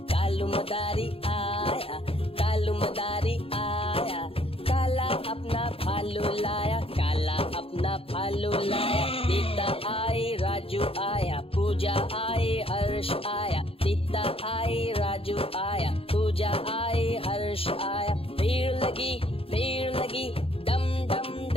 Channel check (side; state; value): right; late; 0.27 ms